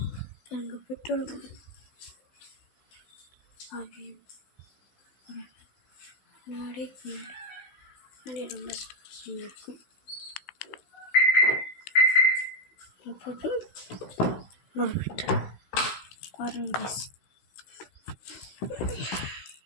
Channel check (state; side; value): late; right; 16 ms